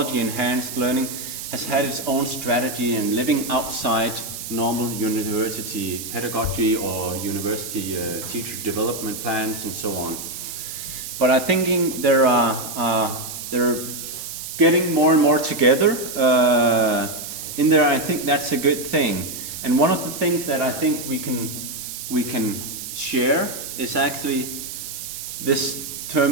learning has had its own strategy and living outside normal university pedagogy or university teacher development plans and so on. But I think they're getting more and more together in there. I think that's a good thing. And one of the things that I think we can share is actually this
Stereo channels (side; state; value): right; noise; hiss, 8 dB below the sound